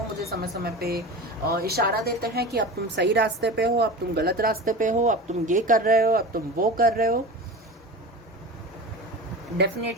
मुझे समय समय पे इशारा देते हैं कि अब तुम सही रास्ते पे हो, अब तुम गलत रास्ते पे हो, अब तुम ये कर रहे हो, अब तुम वो कर रहे हो।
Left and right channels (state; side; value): normal; both; correlation 0.31